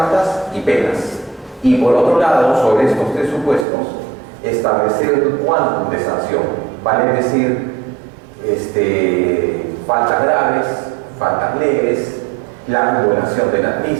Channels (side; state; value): left; drops out; at 3.7 s